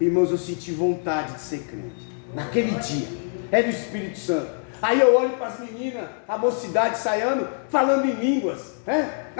eu senti vontade de ser crente, naquele dia, era o Espírito Santo. Aí eu olho para as meninas, a mocidade saindo, falando em línguas, né?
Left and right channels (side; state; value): right; silent; 61 dB below the other